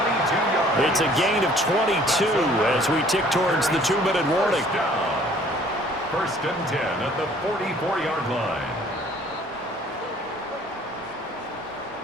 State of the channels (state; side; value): normal; both; correlation 0.56